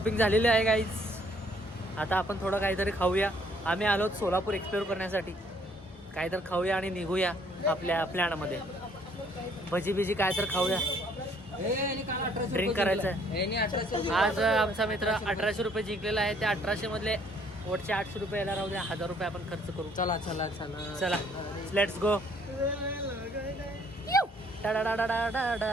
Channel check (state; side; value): normal; both; correlation 0.63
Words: झालेली आहे गाईज. आता आपण थोडं काहीतरी खाऊया. आम्ही आलो सोलापूर एक्सप्लोर करण्यासाठी. काहीतरी खाऊया आणि निघूया आपल्या प्लॅनमध्ये. भजी बिजी काय तर खाऊया. ड्रिंक करायचं आहे. आज आमचा मित्र 1800 रुपये जिंकलेला आहे. त्या 1800 मधले वरचे 800 रुपये यायला राहू द्या. 1000 रुपये आपण खर्च करू. चला चला चला चला लेट्स गो.